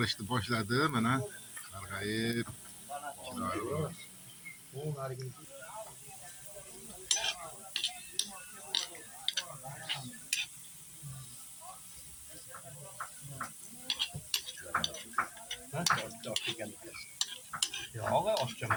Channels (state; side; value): identical; both; correlation 1.00